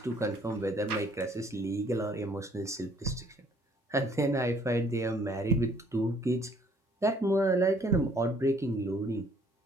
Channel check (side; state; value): both; normal; correlation 0.61